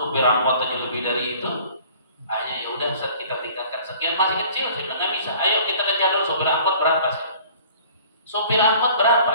angkot aja lebih dari itu. Akhirnya ya udah Ustaz kita tingkatkan sekian, masih kecil. Saya bilang nggak bisa. Ayo kita kejar dulu sopir angkot berapa sih? Sopir angkot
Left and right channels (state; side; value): inverted; both; correlation -0.50